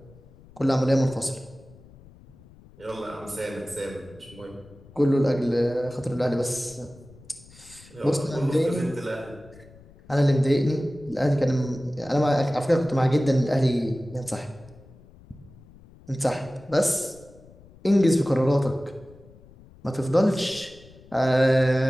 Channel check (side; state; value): left; noise; rumble, 23 dB below the sound